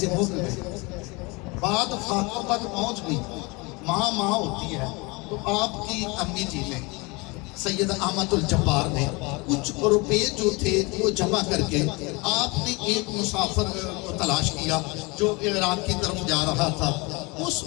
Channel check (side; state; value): right; quieter; 26.7 dB